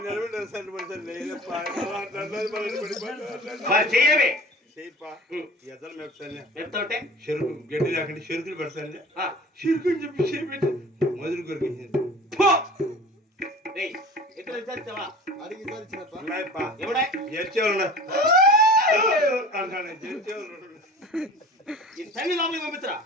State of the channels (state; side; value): normal; both; correlation 0.40